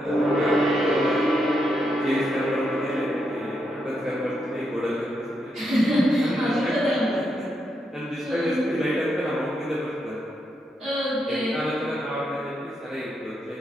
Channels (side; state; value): both; normal; correlation 0.81